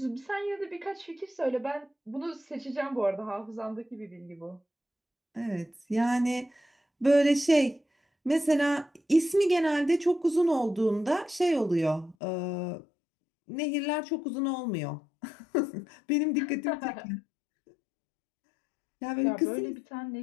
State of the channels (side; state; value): right; drops out; at 12.2 s